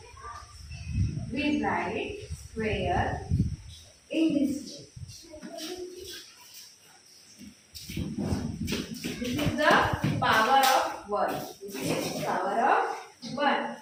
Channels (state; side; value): identical; both; correlation 1.00